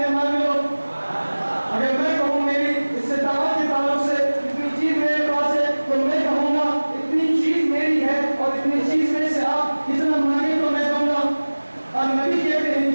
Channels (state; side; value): inverted; both; correlation -1.00